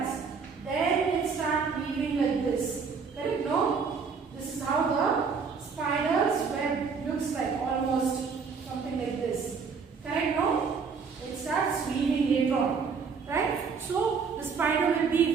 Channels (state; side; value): quieter; left; 5.5 dB